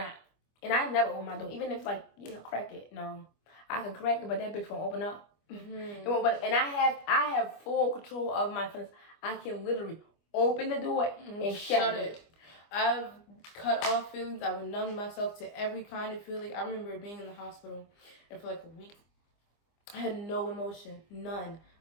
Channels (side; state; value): right; late; 25 ms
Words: And I never open my door, even if, like, crack it. No, I can crack it, but that bitch won't open up. It won't. And I have full control of my feelings. I can literally open the door and shut it. I've cut off feelings. I've numbed myself to every kind of feeling. I remember being in the hospital, and for like a week, I had no emotion, none.